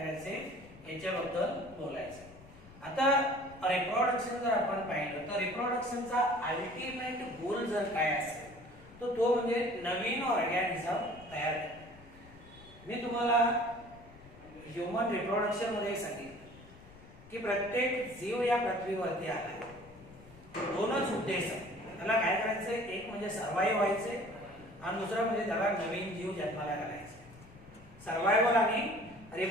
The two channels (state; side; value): noise; left; rumble, 21 dB below the sound